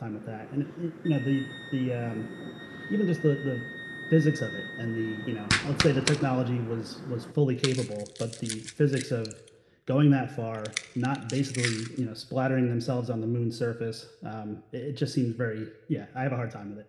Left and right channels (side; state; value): both; identical; correlation 1.00